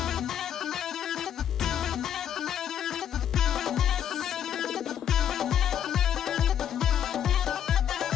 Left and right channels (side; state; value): right; quieter; 9.6 dB